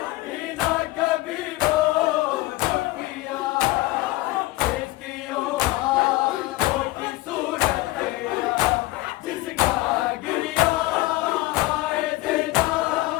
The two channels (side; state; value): right; quieter; 19.2 dB